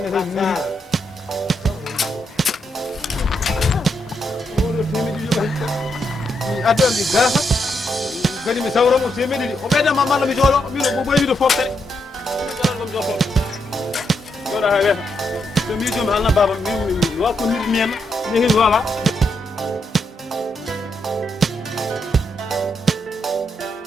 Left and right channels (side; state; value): both; normal; correlation 0.80